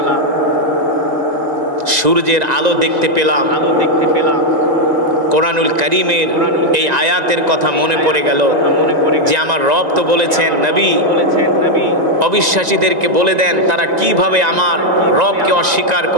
সূর্যের আলো দেখতে পেলাম। কোরআনুল কারীমের এই আয়াতের কথা মনে পড়ে গেল যে আমার রব তো বলেছেন, নবী অবিশ্বাসীদেরকে বলে দেন তারা কিভাবে আমার রবকে অস্বীকার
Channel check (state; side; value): late; left; 1.9 ms